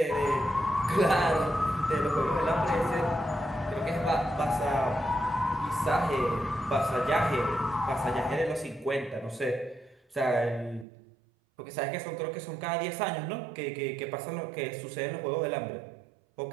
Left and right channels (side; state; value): left; drops out; at 10.9 s